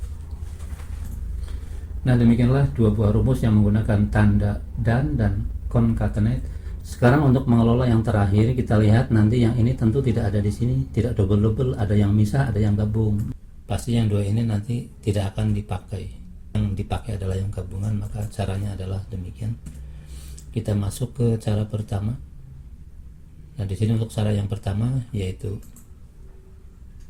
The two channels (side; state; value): both; identical; correlation 1.00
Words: Nah, demikianlah 2 buah rumus yang menggunakan tanda dan concatenate. Sekarang untuk mengelola yang terakhir, kita lihat nanti yang ini tentu tidak ada di sini, tidak double-double, ada yang misah, ada yang gabung. Pasti yang 2 ini nanti tidak akan dipakai. Yang dipakai adalah yang gabungan, maka caranya adalah demikian. Kita masuk ke cara pertama. Nah, di sini untuk cara yang pertama yaitu